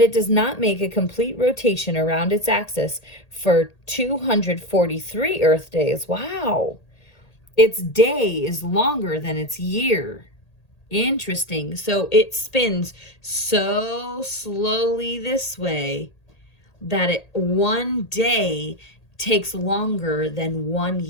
it does not make a complete rotation around its axis for 243 Earth days. Wow! Its day is longer than its year. Interesting. So it spins so slowly this way that one day takes longer than 1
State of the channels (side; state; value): right; late; 1.8 ms